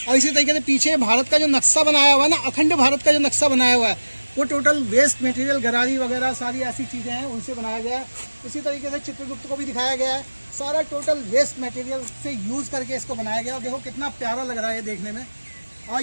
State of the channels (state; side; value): inverted; both; correlation -1.00